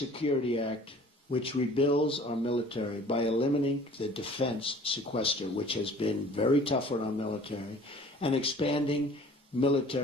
Act, which rebuilds our military by eliminating the defense sequester, which has been very tough on our military, and expanding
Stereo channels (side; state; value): both; normal; correlation 0.49